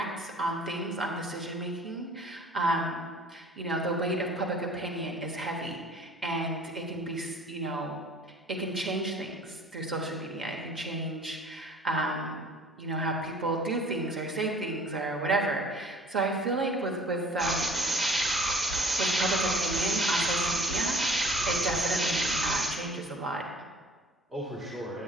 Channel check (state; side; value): normal; both; correlation 0.49